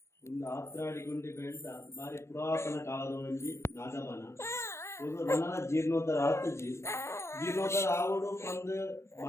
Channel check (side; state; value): right; late; 0.13 ms